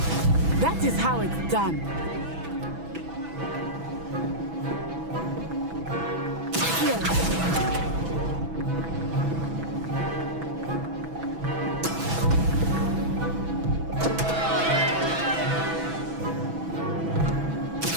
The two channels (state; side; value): late; left; 6.1 ms